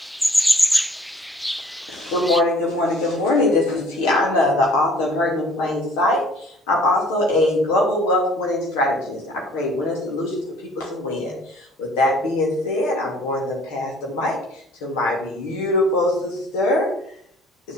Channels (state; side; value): normal; both; correlation 0.55